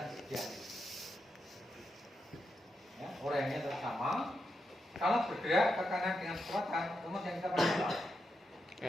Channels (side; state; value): both; normal; correlation 0.85